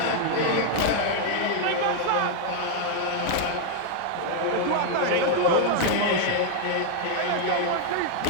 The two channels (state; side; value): different; both; correlation 0.00